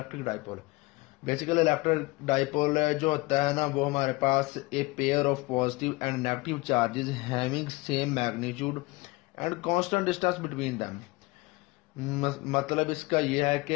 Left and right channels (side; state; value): right; quieter; 23.3 dB